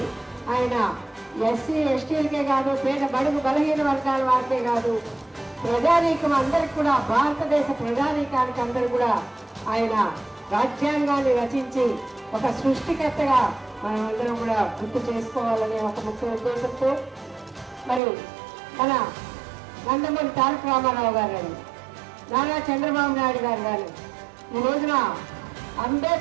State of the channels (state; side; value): drops out; left; at 18.0 s